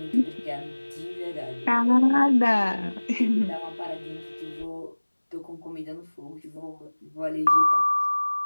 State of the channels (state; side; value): inverted; both; correlation -1.00